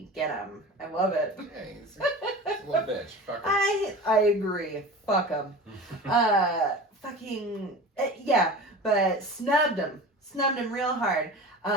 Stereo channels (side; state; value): both; normal; correlation 0.35